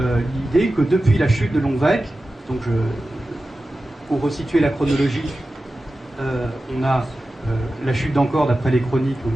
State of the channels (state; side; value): normal; both; correlation 0.94